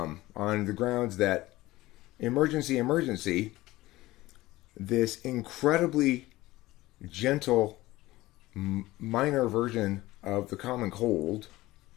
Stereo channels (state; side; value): quieter; right; 18.1 dB